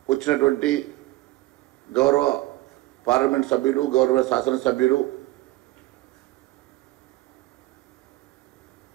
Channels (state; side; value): quieter; left; 18.3 dB